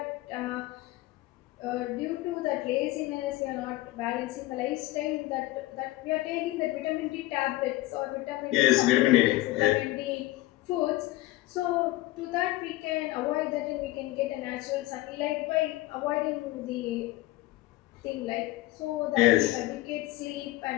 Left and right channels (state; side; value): quieter; right; 18.1 dB